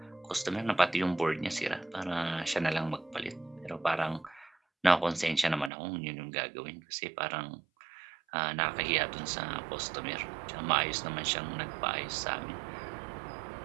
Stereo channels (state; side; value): drops out; left; at 5.7 s